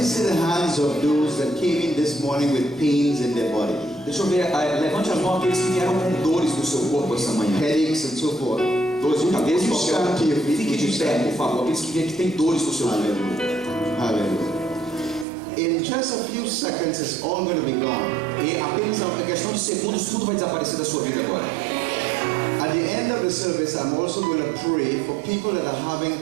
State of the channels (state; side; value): drops out; left; at 15.2 s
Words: see the hands of those that came in this morning with pains in their body, Deixa eu ver, levante as mãos aqueles que vieram com dores no seu corpo essa manhã. headaches and so forth. Dores de cabeça, Would you stand to your feet? fique de pé, por favor. Aqueles que vêm que têm dores no seu corpo. Hallelujah. Hallelujah. In just a few seconds, it's all going to be gone. E apenas a questão de segundos, tudo vai desaparecer da sua vida agora. At the end of the service, I'm also going to pray for people that are having